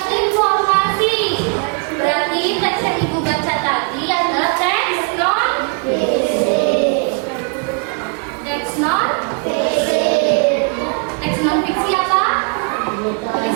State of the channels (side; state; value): left; quieter; 37.1 dB